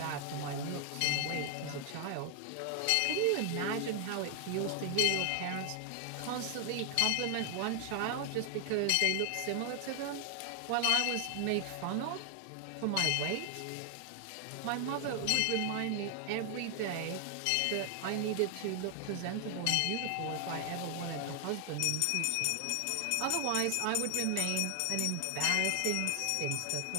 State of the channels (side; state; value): both; different; correlation 0.00